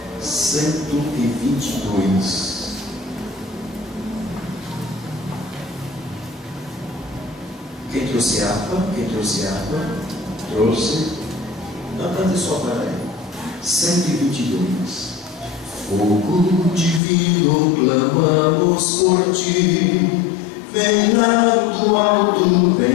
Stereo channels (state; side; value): drops out; right; at 17.0 s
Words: 122. Quem trouxe harpa? Quem trouxe harpa? Trouxe. Não, cante só para aí. 122. Fogo divino, clamamos por ti. Vem lá do alto,